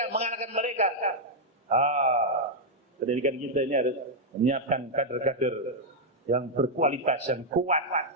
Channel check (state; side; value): normal; both; correlation -0.02